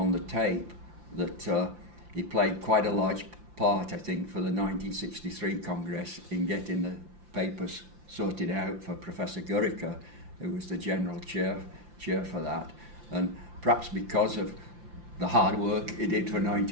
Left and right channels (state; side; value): late; left; 5.8 ms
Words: the tape that he played quite a large part, I think, for the 1963 Congress in getting the papers sorted out for Professor Gurica, who was the general chair for that. And perhaps because of the hard work he did for